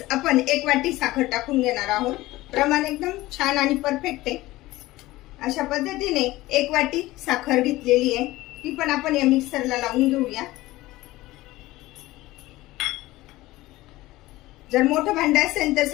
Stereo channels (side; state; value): right; quieter; 18.1 dB